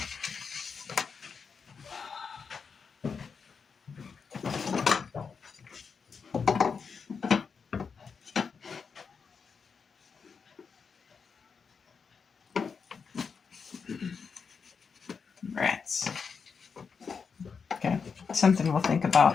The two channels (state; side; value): quieter; right; 5.7 dB